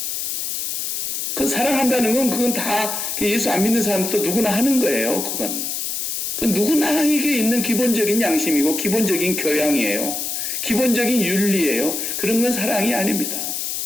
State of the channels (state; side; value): noise; left; hiss, 3 dB below the sound